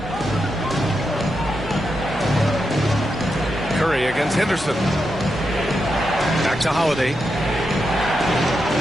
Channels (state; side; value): normal; both; correlation 0.85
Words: Curry against Henderson. Back to Holiday.